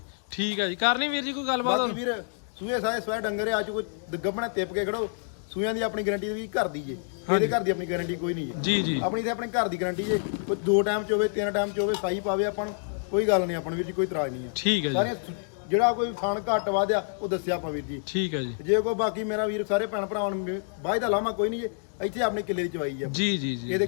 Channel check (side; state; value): right; silent; digital silence